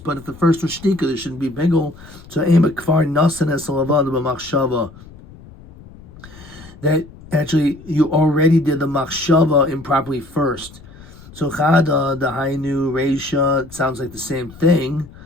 but if the first was shtika, there shouldn't be bigel. So ema kfar nasan es lavana b'machshava. That actually, you already did the machshava improperly first. So chada, the hainu, reisha, it sounds like the same thing.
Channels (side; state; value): left; noise; rumble, 20 dB below the sound